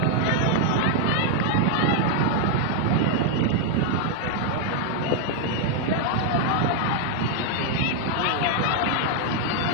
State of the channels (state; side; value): different; both; correlation 0.00